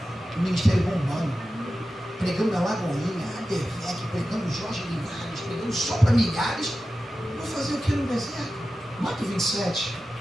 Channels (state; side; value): normal; both; correlation 0.93